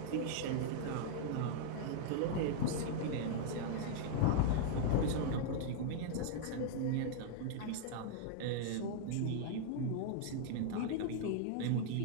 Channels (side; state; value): both; different; correlation -0.01